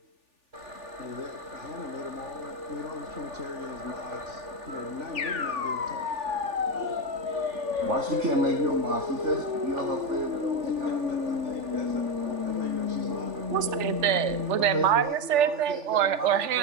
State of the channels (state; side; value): late; left; 3.4 ms